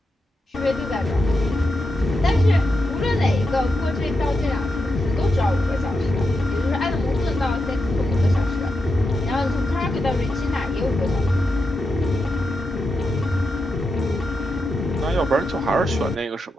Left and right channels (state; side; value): normal; both; correlation 0.87